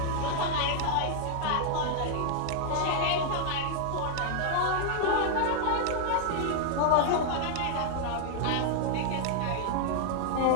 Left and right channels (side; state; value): both; different; correlation 0.00